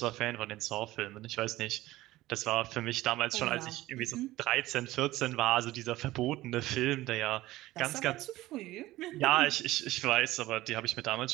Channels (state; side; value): quieter; left; 17.1 dB